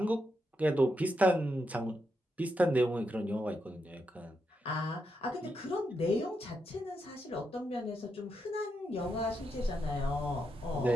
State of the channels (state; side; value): normal; both; correlation 0.83